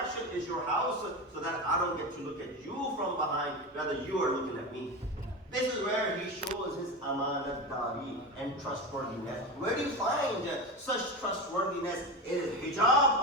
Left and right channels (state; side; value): normal; both; correlation 0.22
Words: is your house, so that I don't get to look at you from behind, rather you are looking at me. This is where he shows his amanat-dari and trustworthiness. Where do you find such trustworthiness? It is hijab